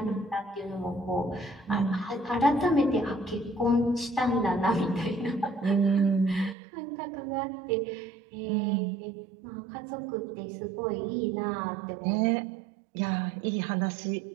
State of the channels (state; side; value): drops out; left; at 6.6 s